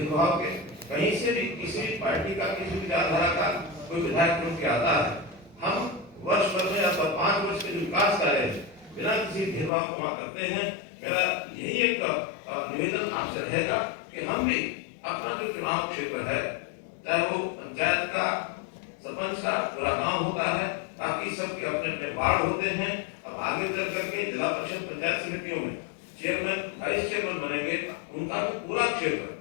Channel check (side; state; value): right; drops out; at 9.7 s